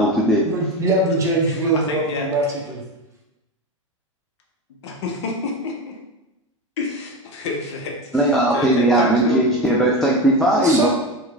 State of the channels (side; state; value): both; normal; correlation 0.21